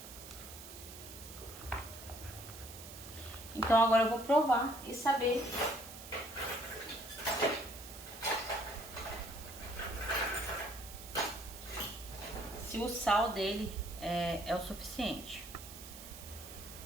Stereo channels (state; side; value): noise; right; hiss, 13 dB below the sound